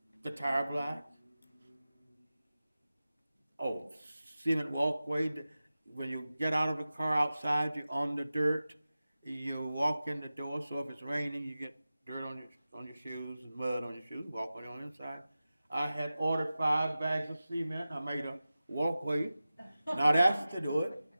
The tire black. Oh, cement walkway. When you get out of the car outside, you're on the dirt. You walk in the door, so if it's raining, you get dirt on your shoes and mud on your shoes. Walk on the inside. I had ordered 5 bags of cement. I made a walkway, not asked to do it,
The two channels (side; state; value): both; inverted; correlation -0.95